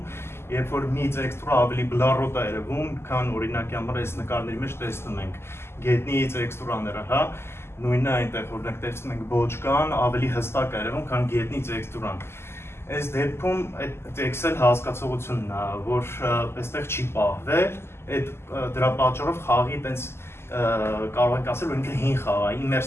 երբ որ մի տեքստուրը ավելի բլառոտ է երևում, քան օրինակի համար այս նկարների մեջ տեսնում ենք գետնի տեքստուրաները, հա, նույնը այնտեղ օրինակ տեսնում ենք բոճկան ավելի հստակ է երևում, քան գետնի տեքստուրան։ Այս դեպքում այդ Excel հասկացողությունն է, որ այստեղ չի պահվել, դրա պատճառով խաղի այտենց կարող ենք ասել, որ ինքը հին խաղ է,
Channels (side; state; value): right; late; 0.12 ms